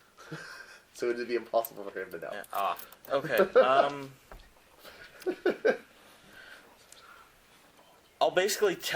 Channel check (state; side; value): identical; both; correlation 1.00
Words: So it would be impossible for him to know. Yeah. Ah. Okay. I'll basically